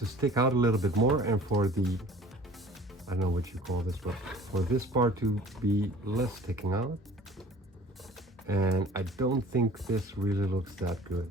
stick out a little bit more and for the, I don't know what you call this, but for this part to be less sticking out. And I don't think this really looks that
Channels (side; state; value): both; normal; correlation 0.47